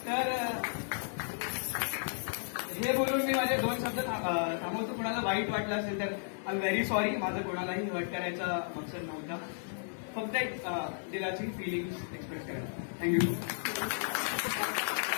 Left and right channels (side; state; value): right; silent; digital silence